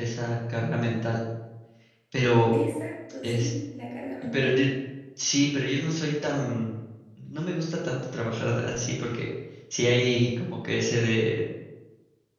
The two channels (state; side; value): identical; both; correlation 1.00